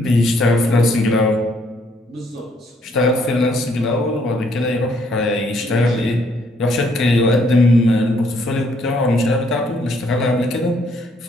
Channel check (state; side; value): normal; both; correlation 0.68